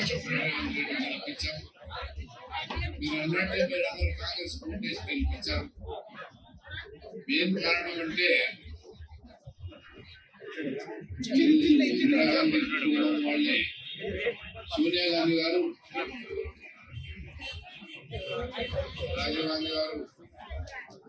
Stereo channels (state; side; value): identical; both; correlation 1.00